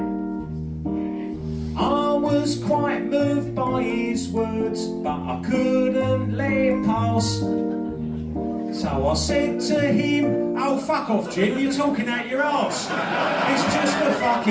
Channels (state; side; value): identical; both; correlation 1.00